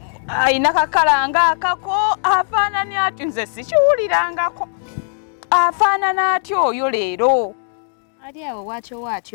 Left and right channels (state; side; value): silent; right; digital silence